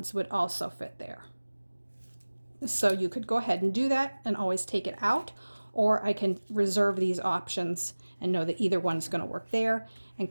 would also fit there. So you could go ahead and do that and always take it out, or I can reserve these options and know that either one's going to work there and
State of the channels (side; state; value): both; inverted; correlation -1.00